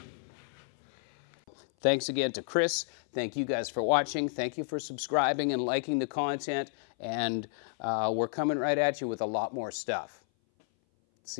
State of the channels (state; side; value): silent; right; 57 dB below the other